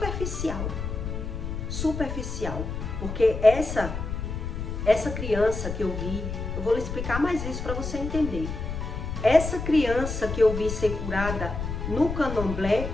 porque essa criança que eu vi, eu vou lhe explicar mais isso para você entender. Essa criança que eu vi ser curada no candomblé,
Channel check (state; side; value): noise; left; rumble, 5 dB below the sound